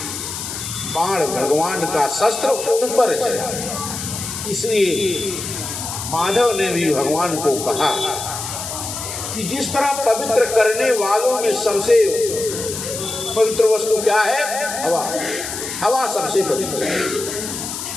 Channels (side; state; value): left; noise; hiss, 6 dB below the sound